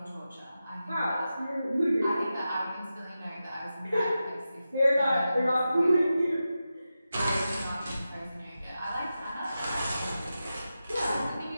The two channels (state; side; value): inverted; both; correlation -0.91